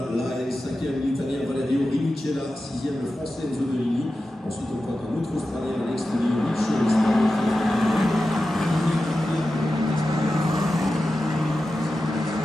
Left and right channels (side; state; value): both; normal; correlation 0.92